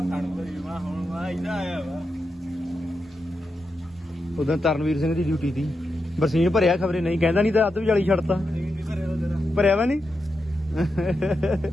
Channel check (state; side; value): normal; both; correlation 0.87